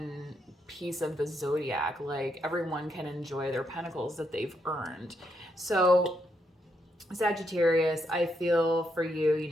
piece of the zodiac. Like, everyone can enjoy their pentacles that they've earned. So Sagittarius, I feel for you,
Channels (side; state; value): both; normal; correlation 0.78